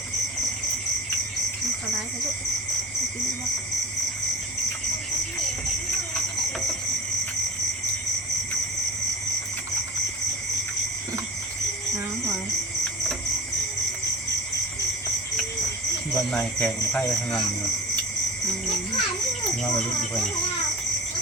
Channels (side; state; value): both; normal; correlation 0.32